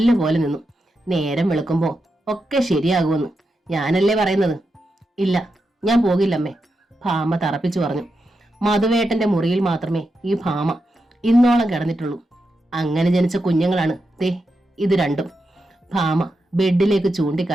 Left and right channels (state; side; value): normal; both; correlation 0.87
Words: പോലെ നിന്നു. നേരം വെളുക്കുമ്പോ ഒക്കെ ശരിയാകുമെന്ന് ഞാനല്ലേ പറയുന്നത്? ഇല്ല, ഞാൻ പോകില്ലമ്മേ, ഭാമ തറപ്പിച്ചു പറഞ്ഞു. മധുവേട്ടന്റെ മുറിയിൽ മാത്രമേ ഈ ഭാമ ഇന്നോളം കിടന്നിട്ടുള്ളൂ. അങ്ങനെ ജനിച്ച കുഞ്ഞുങ്ങളാണ് ദേ ഇത് രണ്ടും. ഭാമ ബെഡിലേക്ക്